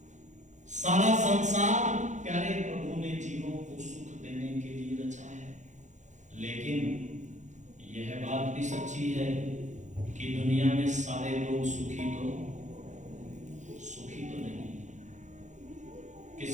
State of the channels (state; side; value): late; left; 0.35 ms